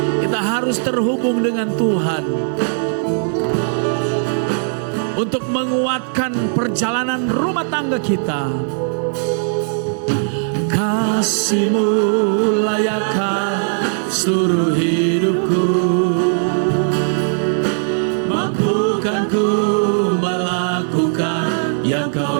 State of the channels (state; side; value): silent; left; digital silence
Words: perjalanan rumah tangga kita. Kasih-Mu layakkan seluruh hidupku, mampukan ku melakukan yang Kau